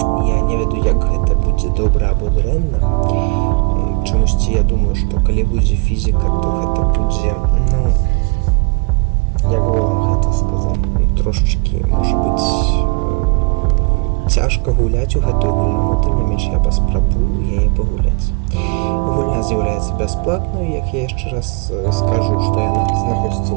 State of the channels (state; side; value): quieter; left; 32.8 dB